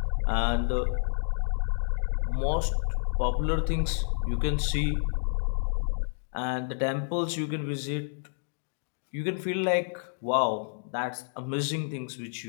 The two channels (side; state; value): right; silent; digital silence